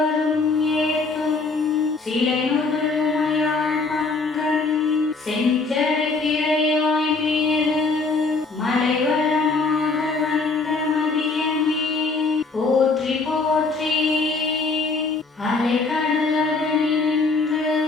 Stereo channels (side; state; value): right; quieter; 3.9 dB